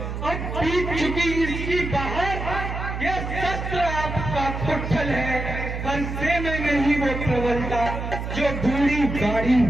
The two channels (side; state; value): right; noise; hum, 5 dB below the sound